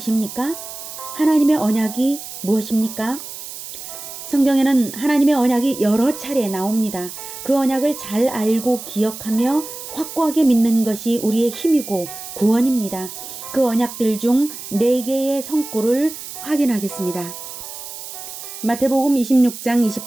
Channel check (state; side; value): noise; right; hiss, 11 dB below the sound